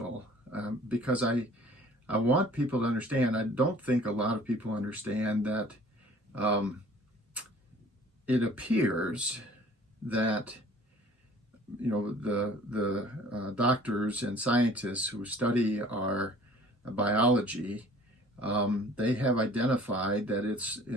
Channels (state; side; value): normal; both; correlation 0.51